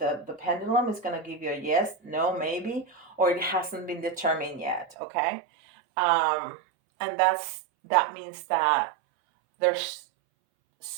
pendulum is going to give you a yes, no, maybe, or it hasn't been determined yet. Okay. And that means that there's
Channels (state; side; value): drops out; left; at 5.0 s